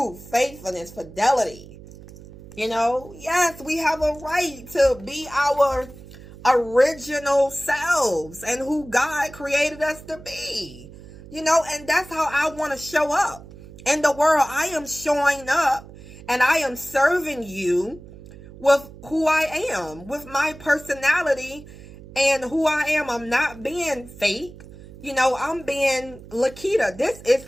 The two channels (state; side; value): noise; right; hum, 18 dB below the sound